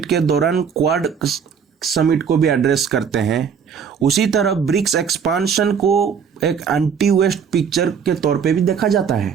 के दौरान क्वाड समिट को भी एड्रेस करते हैं, उसी तरह ब्रिक्स एक्सपांशन को एक एंटी वेस्ट पिक्चर के तौर पे भी देखा जाता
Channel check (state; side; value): quieter; left; 6.9 dB